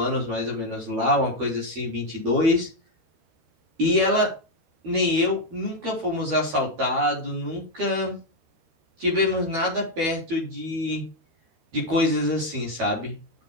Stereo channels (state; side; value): late; left; 12 ms